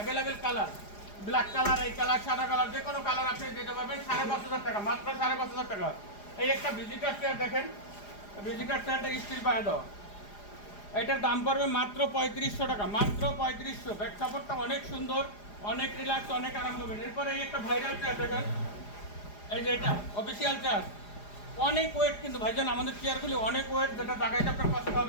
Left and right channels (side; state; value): right; late; 4.9 ms